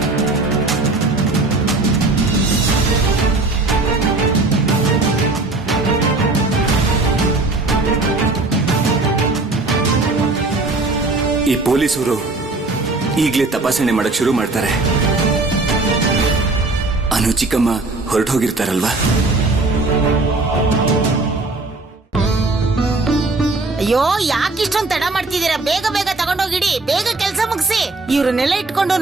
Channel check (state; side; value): quieter; left; 3.3 dB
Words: ಈ ಪೊಲೀಸರು ಈಗಲೇ ತಪಾಸಣೆ ಮಾಡಕ್ ಶುರು ಮಾಡ್ತಾರೆ. ಅನು ಚಿಕ್ಕಮ್ಮ ಹೊರಟು ಹೋಗಿರ್ತಾರಲ್ವಾ? ಅಯ್ಯೋ ಯಾಕಿಷ್ಟೊಂದು ತಡ ಮಾಡ್ತಿದ್ದೀರಾ? ಬೇಗ ಬೇಗ ತಗೊಂಡೋಗಿಡಿ, ಬೇಗ ಕೆಲ್ಸ ಮುಗಿಸಿ. ಇವ್ರನ್ನೆಲ್ಲ ಇಟ್ಕೊಂಡು